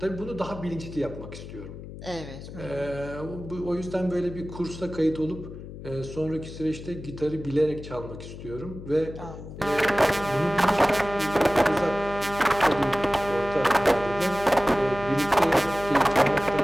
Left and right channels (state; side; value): noise; left; hum, 12 dB below the sound